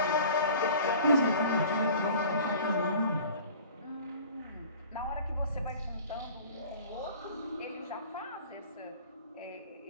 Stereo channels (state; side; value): inverted; both; correlation -0.44